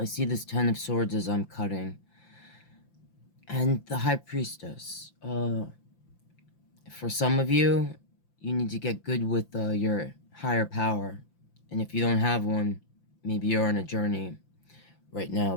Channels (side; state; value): right; late; 5.8 ms